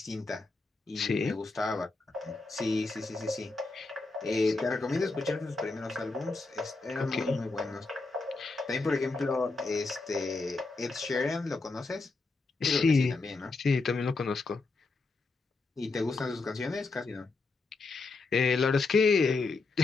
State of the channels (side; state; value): right; quieter; 3.7 dB